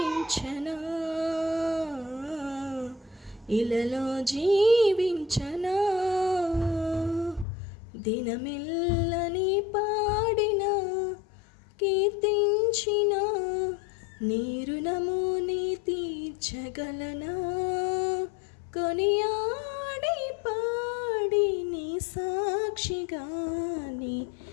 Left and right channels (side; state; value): right; drops out; at 7.5 s